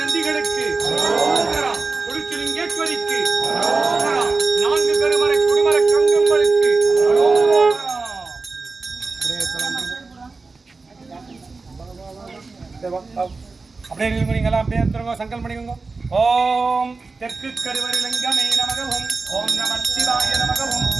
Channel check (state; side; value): quieter; left; 4.0 dB